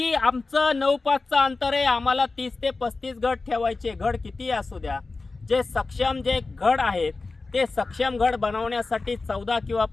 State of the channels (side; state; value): right; quieter; 3.7 dB